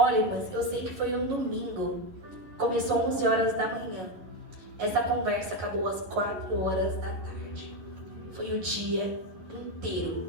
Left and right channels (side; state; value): left; late; 11 ms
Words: mas eu sei que foi um domingo. Começou 11 horas da manhã. Essa conversa acabou às 4 horas da tarde. Foi o dia